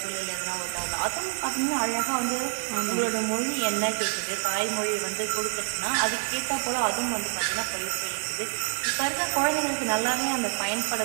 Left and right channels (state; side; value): silent; left; 60 dB below the other